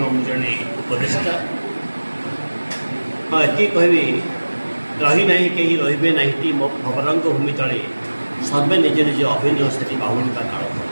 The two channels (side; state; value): both; inverted; correlation -1.00